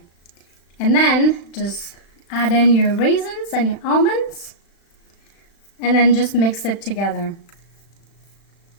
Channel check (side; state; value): right; late; 35 ms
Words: And then just add in your raisins and your almonds and then just mix it together.